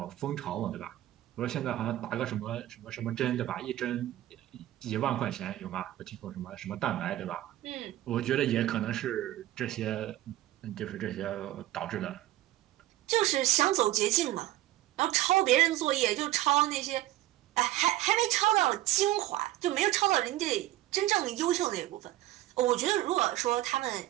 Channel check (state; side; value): quieter; left; 15.2 dB